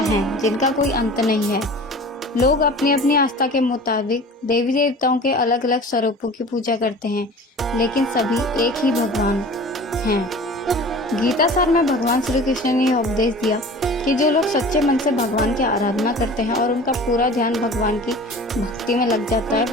हैं जिनका कोई अंत नहीं है। लोग अपनी अपनी आस्था के मुताबिक देवी देवताओं के अलग अलग स्वरूपों की पूजा करते हैं, लेकिन सभी एक ही भगवान हैं। गीता सार में भगवान श्री कृष्ण ने यह उपदेश दिया कि जो लोग सच्चे मन से भगवान की आराधना करते हैं और उनका पूरा ध्यान भगवान की भक्ति में लग जाता है,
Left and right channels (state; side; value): normal; both; correlation 0.41